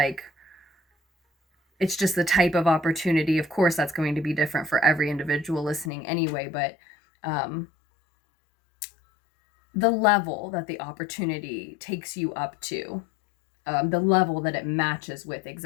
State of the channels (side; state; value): right; drops out; at 5.9 s